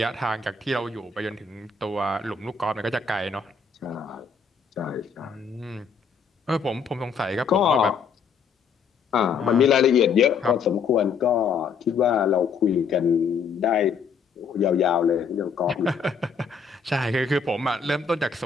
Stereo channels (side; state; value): right; quieter; 5.7 dB